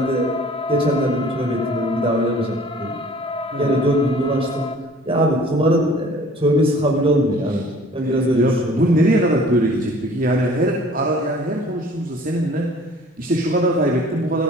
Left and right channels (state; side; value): normal; both; correlation 0.51